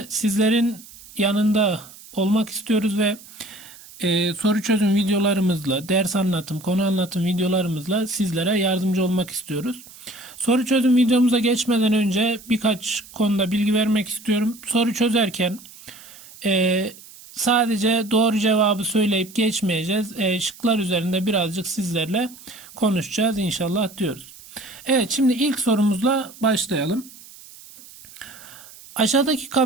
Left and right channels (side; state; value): right; noise; hiss, 20 dB below the sound